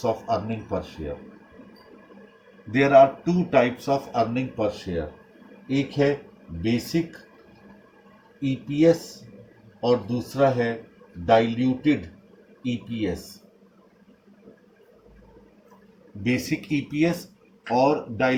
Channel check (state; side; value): identical; both; correlation 1.00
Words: of earning per share. There are two types of earning per share. एक है बेसिक EPS और दूसरा है डाइल्यूटेड EPS। बेसिक EPS और